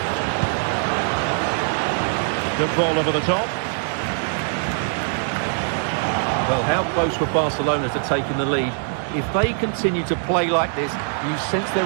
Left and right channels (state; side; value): silent; left; 56 dB below the other